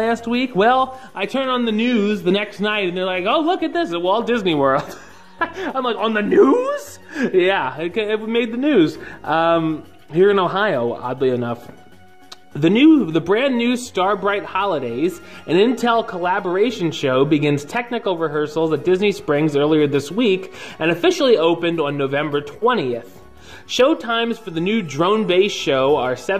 week. Well, I turn on the news the next night and they're like, oh, look at this at Walt Disney World. I'm like, on the news? Yeah, it made the news. Here in Ohio, oddly enough. The brand new Starbright Holidays, an Intel collaboration show, begins technical rehearsals at Disney Springs earlier this week and officially opened on November 20th. Show times for the new drone-based show are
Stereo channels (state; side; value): identical; both; correlation 1.00